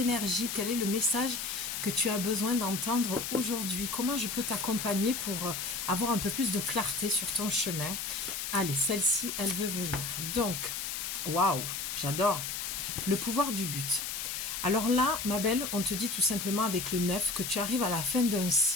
Quel est le message que tu as besoin d'entendre aujourd'hui? Comment je peux t'accompagner pour avoir un peu plus de clarté sur ton chemin? Allez, celle-ci, elle veut venir. Donc, waouh, j'adore. Le pouvoir du but. Alors là, ma belle, on te dit tout simplement avec le 9 que tu arrives à la fin d'un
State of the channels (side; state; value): left; noise; hiss, 4 dB below the sound